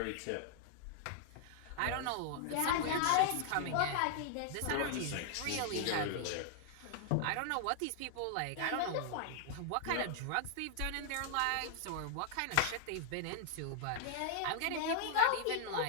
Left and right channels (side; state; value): both; different; correlation 0.00